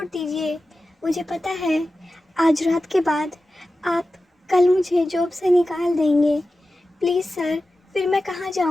दीजिए। मुझे पता है आज रात के बाद आप कल मुझे जॉब से निकाल देंगे। प्लीज़ सर, फिर मैं कहाँ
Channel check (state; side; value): normal; both; correlation 0.94